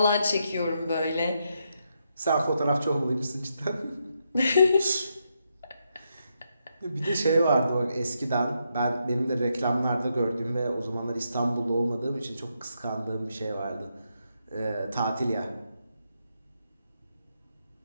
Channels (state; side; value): inverted; both; correlation -0.81